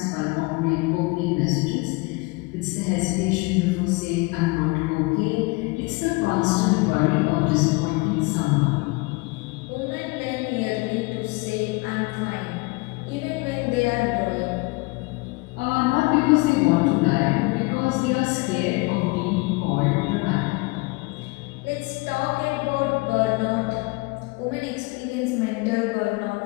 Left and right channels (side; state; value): right; quieter; 25.9 dB